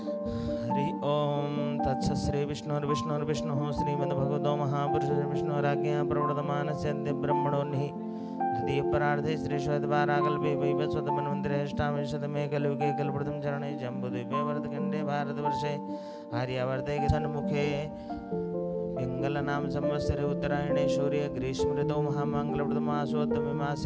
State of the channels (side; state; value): both; identical; correlation 1.00